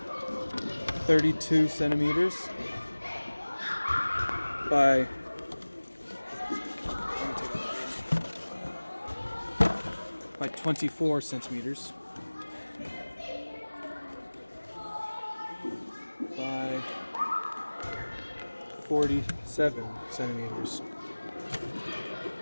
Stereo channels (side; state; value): both; inverted; correlation -1.00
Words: 32 centimeters by 24 centimeters by 47 centimeters.